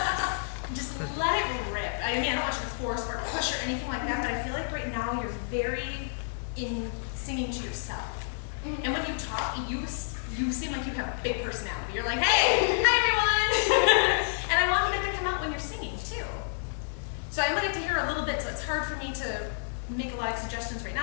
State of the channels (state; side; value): silent; right; digital silence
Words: Just let it rip. I mean, I don't want you to force or push or anything like that, but I feel like right now you're very in singing to yourself. And when you talk, you seem like you have a big personality. You're like, hey, hi everyone! And I want that to come out when you're singing too. So I'm gonna get to hear a little bit, so it's hard for me to make a lot of suggestions right